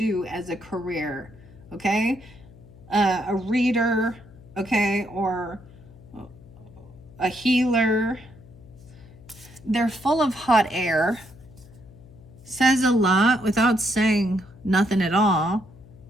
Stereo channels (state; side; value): noise; left; hum, 22 dB below the sound